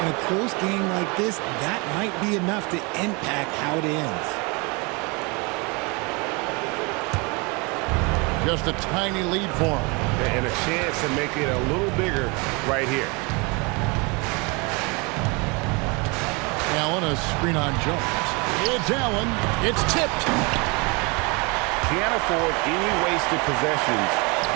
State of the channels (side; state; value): left; quieter; 29.2 dB